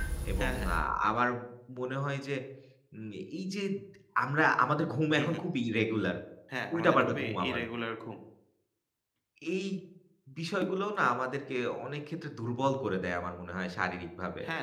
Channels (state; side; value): identical; both; correlation 1.00